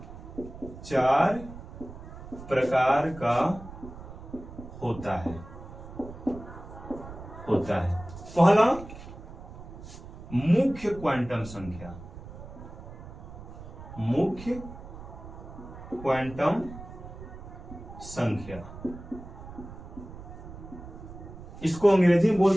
4 प्रकार का होता है। पहला, मुख्य क्वांटम संख्या। मुख्य क्वांटम संख्या, इसको अंग्रेजी में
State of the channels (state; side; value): noise; right; rumble, 14 dB below the sound